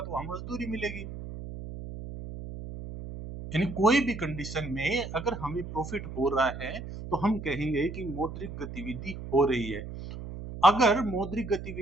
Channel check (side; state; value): right; noise; hum, 10 dB below the sound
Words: तो वहां मजदूरी मिलेगी। यानी कोई भी कंडीशन में अगर हमें प्रॉफिट हो रहा है तो हम कहेंगे कि मौद्रिक गतिविधि हो रही है। अगर मौद्रिक